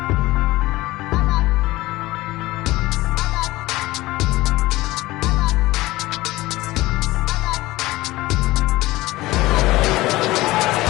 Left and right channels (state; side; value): quieter; right; 18.7 dB